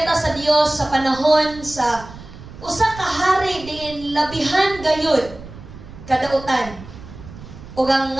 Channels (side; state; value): right; noise; rumble, 16 dB below the sound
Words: sa Dios sa panahon sa usa ka hari diin labihan gayud kadautan. Ug ang